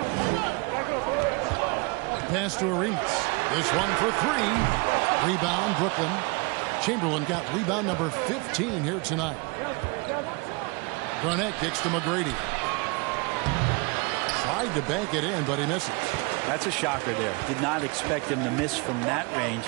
Pass to Arenas. This one for 3. Rebound, Brooklyn. Chamberlain got rebound number 15 here tonight. Garnett kicks to McGrady. Tried to bank it in, but he misses. That's a shocker there. Did not expect him to miss from that range.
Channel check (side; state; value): left; quieter; 29.0 dB